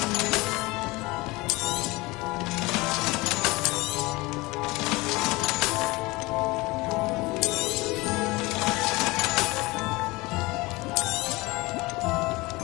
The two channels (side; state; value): right; quieter; 22.6 dB